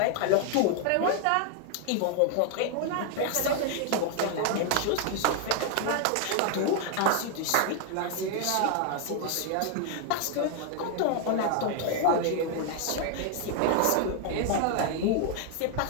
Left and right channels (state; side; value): different; both; correlation 0.00